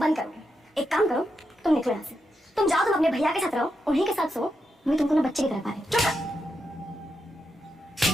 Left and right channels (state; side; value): normal; both; correlation 0.85